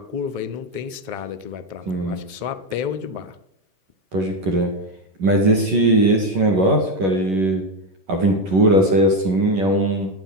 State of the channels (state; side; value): late; left; 11 ms